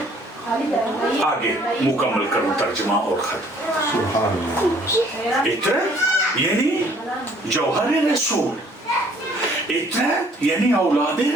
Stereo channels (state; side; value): normal; both; correlation 0.59